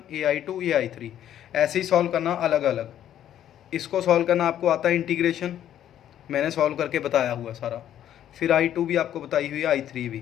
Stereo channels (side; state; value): right; quieter; 11.0 dB